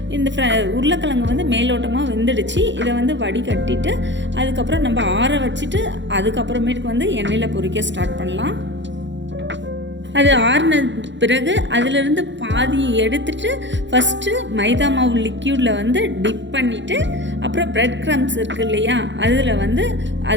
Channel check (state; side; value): late; left; 0.53 ms